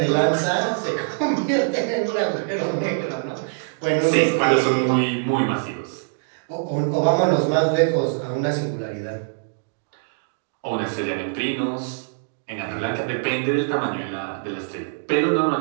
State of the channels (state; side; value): silent; left; digital silence